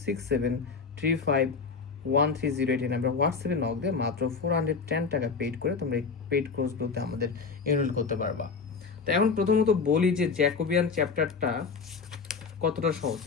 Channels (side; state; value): right; quieter; 5.1 dB